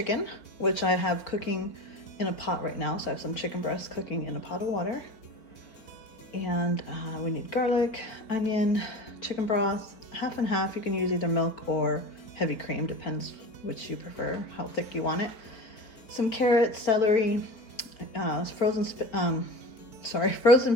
which I have cooking in a pot right now. So I have some chicken breast cooking in a pot of water. And we need garlic, onion, chicken broth, half and half. You can use either milk or heavy cream, depends which you prefer, how thick you want it. Some carrots, celery, frozen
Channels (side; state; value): right; late; 4.4 ms